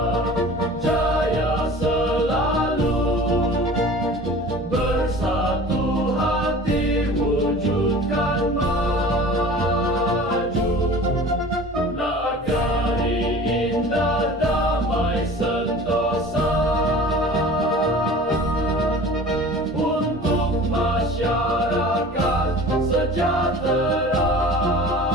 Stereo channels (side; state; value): both; normal; correlation 0.41